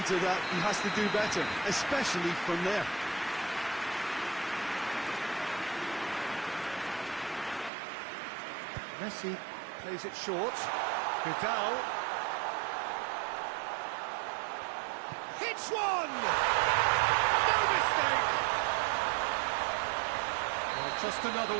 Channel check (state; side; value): drops out; left; at 7.7 s